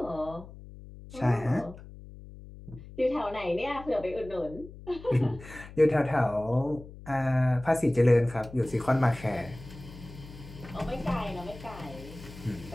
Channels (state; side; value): noise; left; hum, 16 dB below the sound